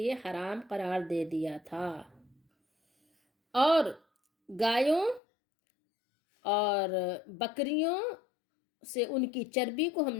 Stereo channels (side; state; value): right; drops out; at 5.2 s